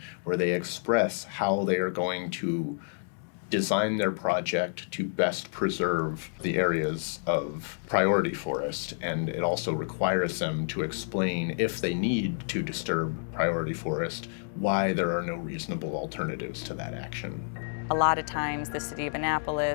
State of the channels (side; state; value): right; silent; digital silence